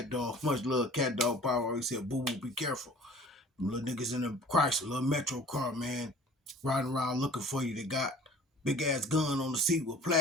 Dog, much love Cat Dog Power. He said, boo boo, be careful. Them little niggas in the Chrysler, little Metro car, man, riding around looking for you. They got big ass gun on the seat with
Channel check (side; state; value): both; normal; correlation 0.48